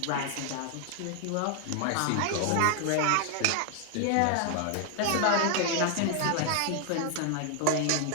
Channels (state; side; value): different; both; correlation 0.00